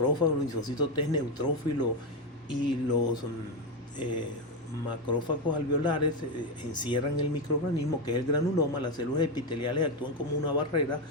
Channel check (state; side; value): normal; both; correlation 0.10